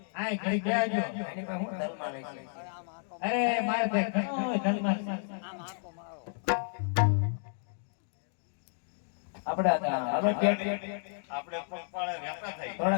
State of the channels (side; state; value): right; silent; digital silence